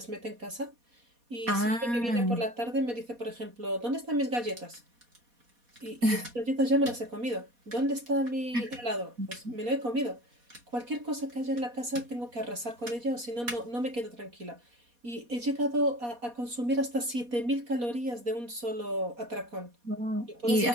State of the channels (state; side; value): late; left; 4.2 ms